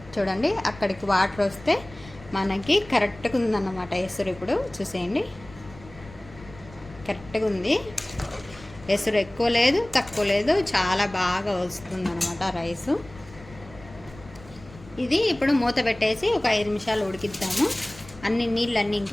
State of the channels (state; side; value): noise; left; rumble, 20 dB below the sound